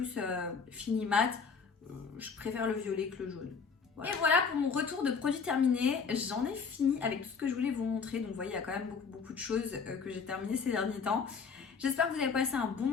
fini mat. Je préfère le violet que le jaune. Voilà. Et voilà pour mon retour de produit terminé. J'en ai fini avec tout ce que je voulais vous montrer. Donc vous voyez, il y a quand même beaucoup de choses que j'ai terminées ces derniers temps. J'espère que vous avez passé un bon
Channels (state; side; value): quieter; right; 5.5 dB